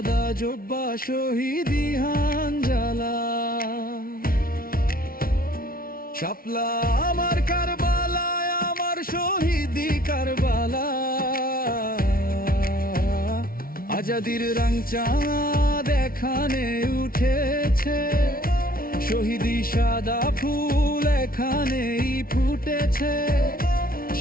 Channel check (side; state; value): right; late; 0.43 ms